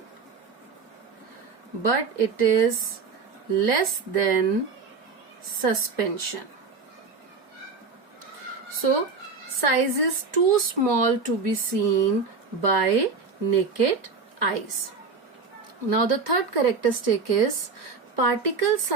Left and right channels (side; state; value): left; quieter; 4.7 dB